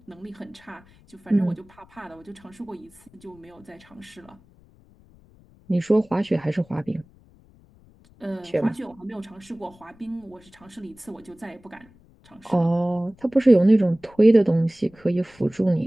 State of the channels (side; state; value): left; noise; rumble, 27 dB below the sound